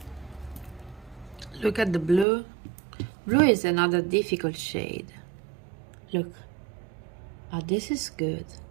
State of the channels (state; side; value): drops out; left; at 2.2 s